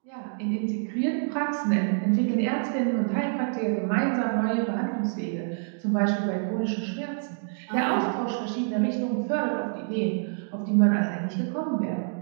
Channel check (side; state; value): left; silent; digital silence